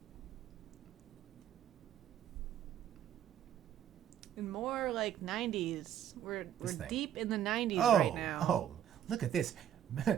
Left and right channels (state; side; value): quieter; left; 10.1 dB